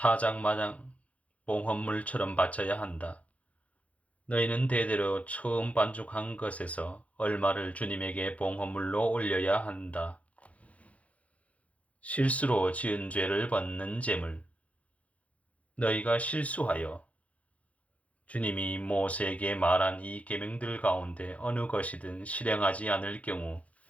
봉헌물처럼 바쳐야 한다. 너희는 대대로 처음 반죽한 것에서 얼마를 주님에게 봉헌물로 올려야 한다. 실수로 지은 죄를 벗는 제물. 너희가 실수하여 주님이 모세에게 말한 이 계명들 가운데 어느 것이든 실행하지 않을 경우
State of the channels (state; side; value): late; right; 0.066 ms